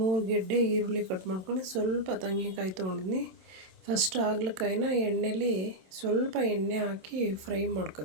ಗೆಡ್ಡೆ ಈರುಳ್ಳಿ ಕಟ್ ಮಾಡ್ಕೊಂಡು, ಸ್ವಲ್ಪ ತೆಂಗಿನಕಾಯಿ ತೊಗೊಂಡಿದ್ದೀನಿ. ಫಸ್ಟ್ ಹಾಗಲಕಾಯಿನ ಎಣ್ಣೆಲಿ ಸ್ವಲ್ಪ ಎಣ್ಣೆ ಹಾಕಿ ಫ್ರೈ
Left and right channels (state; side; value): late; left; 27 ms